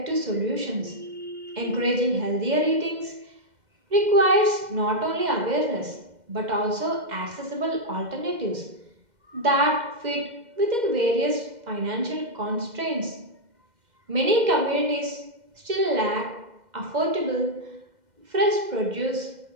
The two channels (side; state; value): left; late; 2.1 ms